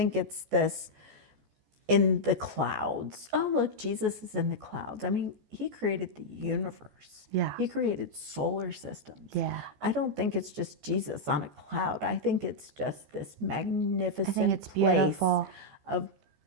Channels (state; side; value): late; left; 14 ms